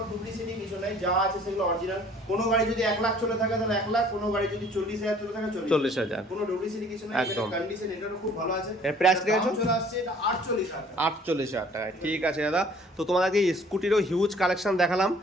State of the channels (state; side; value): normal; both; correlation 0.55